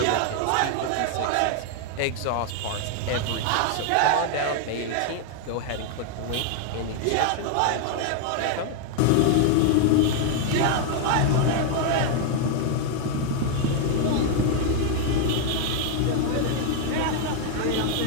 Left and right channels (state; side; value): different; both; correlation 0.00